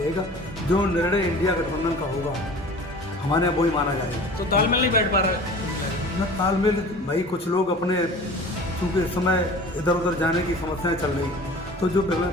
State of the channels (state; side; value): normal; both; correlation 0.42